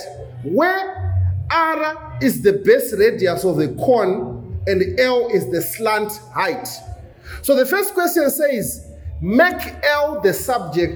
Where r is the base radius of the cone and l is the slant height. So the first question says, make L the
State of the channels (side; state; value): both; identical; correlation 1.00